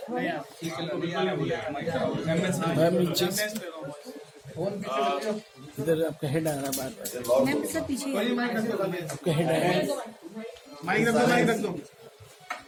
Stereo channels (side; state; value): both; identical; correlation 1.00